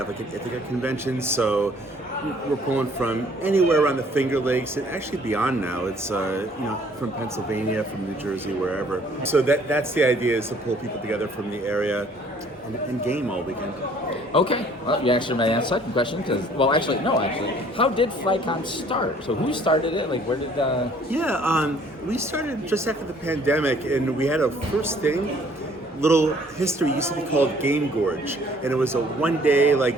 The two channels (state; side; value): normal; both; correlation 0.58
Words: like an Ithaca convention. So we're pulling from anywhere around the Finger Lakes and actually beyond now. It's from Pennsylvania, from New Jersey, wherever. So that's the idea, is to pull people together from the area and game all weekend. Okay, well, you answered my second question because, how did FlagCon start? So who started it? Like, where did? We started just after the pandemic, and we had a first thing. Little history used to be called Game Gorge, and it was a one-day